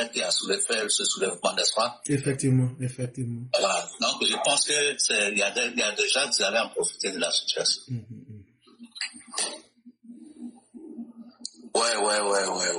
qui a fait ce soulèvement, n'est-ce pas? Effectivement, effectivement. Voilà. Donc, je pense que il y a des gens qui allaient en profiter de la situation. Ouais.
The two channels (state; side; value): identical; both; correlation 1.00